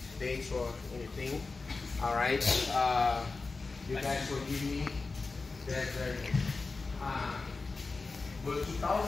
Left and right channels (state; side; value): quieter; right; 4.0 dB